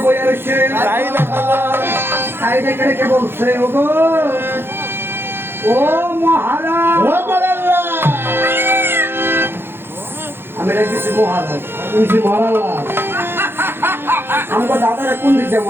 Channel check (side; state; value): left; late; 0.11 ms